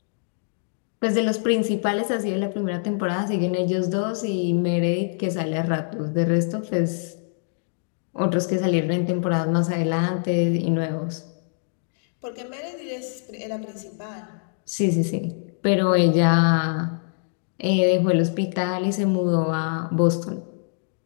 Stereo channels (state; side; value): silent; right; digital silence